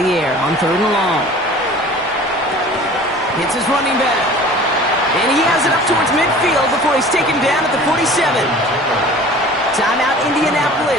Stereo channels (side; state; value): both; normal; correlation 0.44